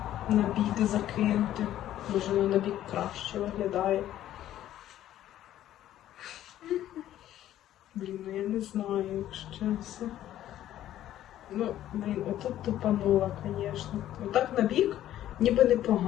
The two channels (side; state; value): right; quieter; 12.6 dB